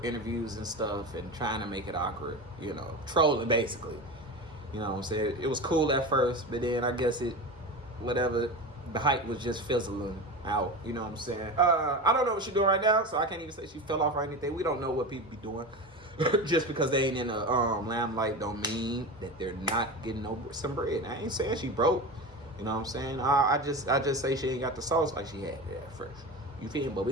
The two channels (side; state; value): both; normal; correlation 0.26